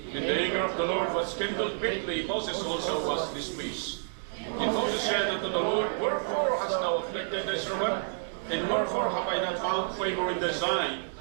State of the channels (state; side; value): silent; left; digital silence